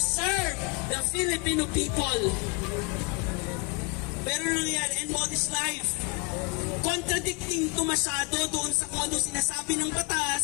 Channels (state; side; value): quieter; right; 30.3 dB